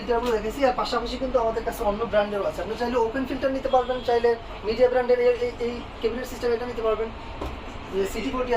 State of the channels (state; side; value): identical; both; correlation 1.00